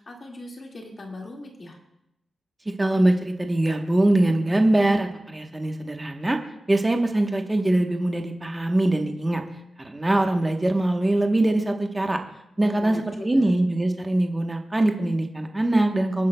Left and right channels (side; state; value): both; normal; correlation 0.98